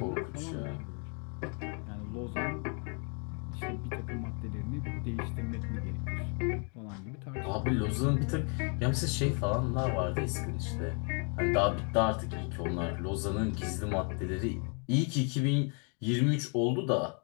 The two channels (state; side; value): quieter; right; 38.4 dB